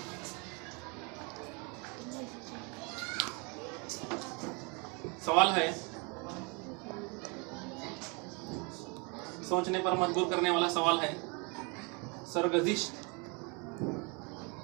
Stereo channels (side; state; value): left; quieter; 31.6 dB